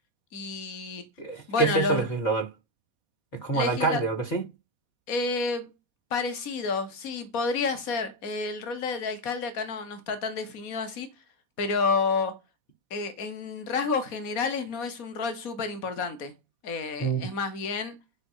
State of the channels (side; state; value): right; late; 4.1 ms